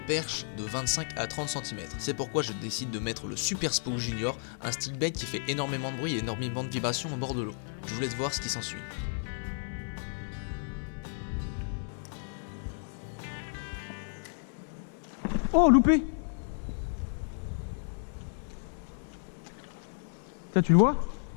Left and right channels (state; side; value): silent; right; 56 dB below the other